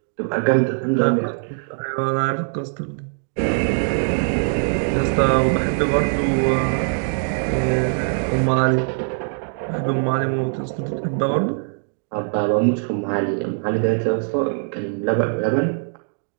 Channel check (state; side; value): silent; left; 64 dB below the other